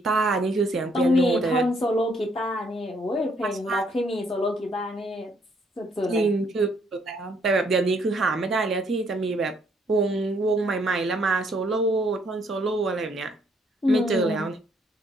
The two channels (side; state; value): both; normal; correlation 0.68